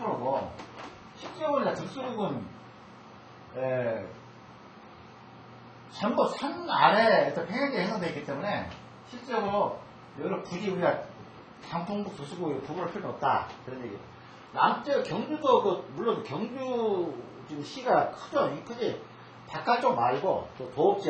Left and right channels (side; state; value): both; identical; correlation 1.00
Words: 실제로는 적수구는 전부 산 아래에 평양지에 형성되어 있기 때문에 실제로 여기를 굳이 우리가 장풍구 적수구 구분할 필요는 없다 그런 얘기예요. 남쪽 경주도 물론 경주 지금 시가 크죠. 크지. 바깥쪽 말고 또